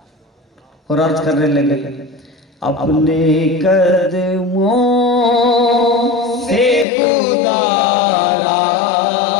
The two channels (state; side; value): drops out; right; at 6.9 s